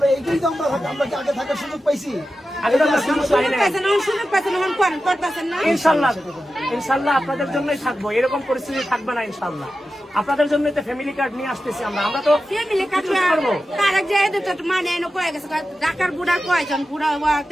এইটাই তো আমরা কি আগে থাকার সুযোগ পাইছি? ইনশাল্লাহ আপনাদের জন্যই থাকবো, এরকম পরিস্থিতি থাকবে না ইনশাল্লাহ। আপনাদের জন্য তো ফ্যামিলি কার্ড নিয়ে আসতেছি আমরা তো ফ্যামিলি কার্ড করবো। তারেক যে মানে কয়ে গেছে ঢাকার বুড়া কয়জন বুড়া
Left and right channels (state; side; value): normal; both; correlation 0.92